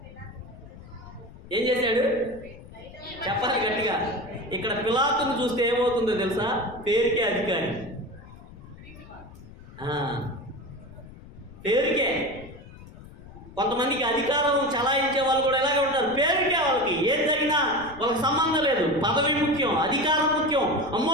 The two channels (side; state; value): left; noise; rumble, 18 dB below the sound